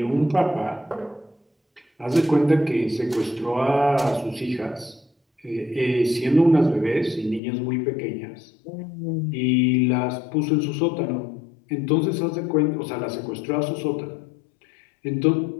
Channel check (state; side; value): drops out; right; at 7.4 s